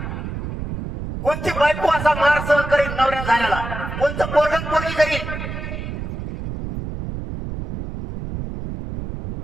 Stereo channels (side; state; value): right; noise; rumble, 7 dB below the sound